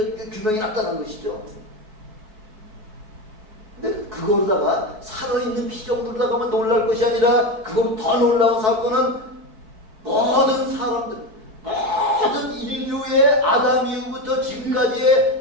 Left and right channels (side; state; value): left; late; 4.7 ms